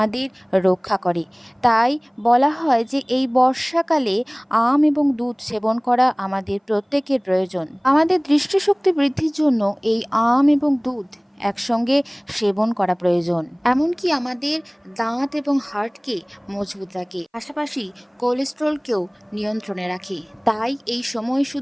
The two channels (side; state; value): both; identical; correlation 1.00